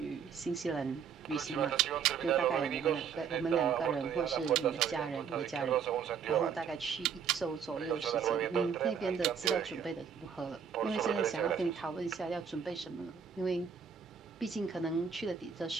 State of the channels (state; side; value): quieter; left; 7.0 dB